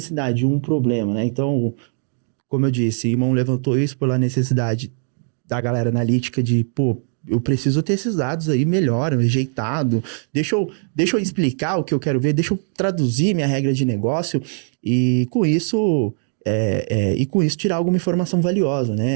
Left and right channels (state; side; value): silent; left; 65 dB below the other